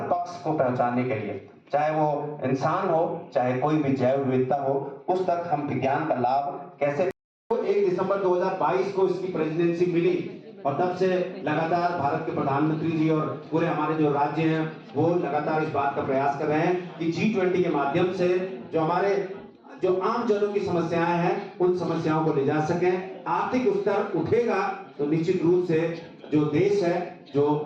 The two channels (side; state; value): both; identical; correlation 1.00